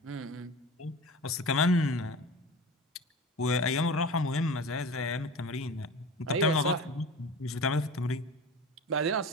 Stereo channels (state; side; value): normal; both; correlation 0.34